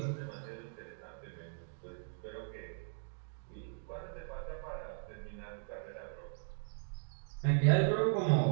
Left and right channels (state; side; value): silent; left; digital silence